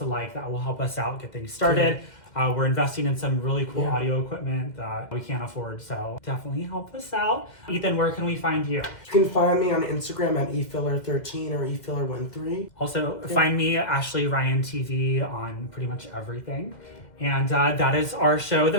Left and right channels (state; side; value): late; right; 2.1 ms